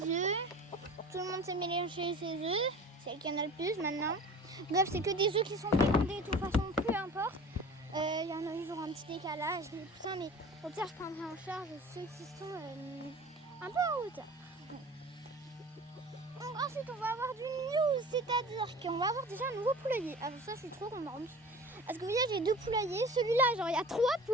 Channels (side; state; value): both; normal; correlation 0.40